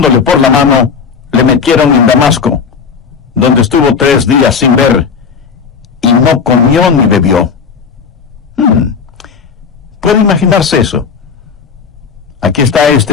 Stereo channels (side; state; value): right; quieter; 6.0 dB